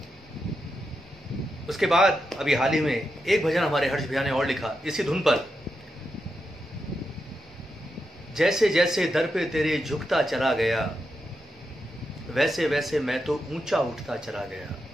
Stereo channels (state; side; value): normal; both; correlation 0.86